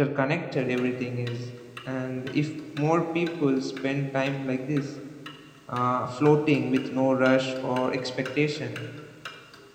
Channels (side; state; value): both; identical; correlation 1.00